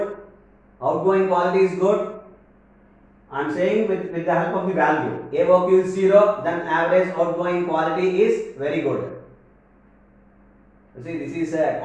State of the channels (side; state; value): both; identical; correlation 1.00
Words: Outgoing quality is good. I am saying with the help of the value. AOQ is 0, then average outgoing quality is very good. You see, this is a